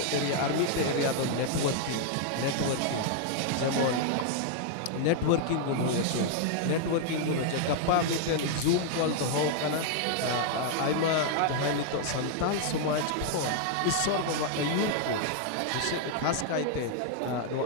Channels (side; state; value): both; different; correlation 0.00